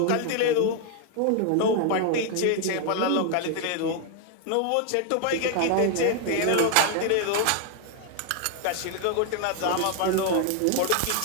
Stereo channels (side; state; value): both; different; correlation 0.00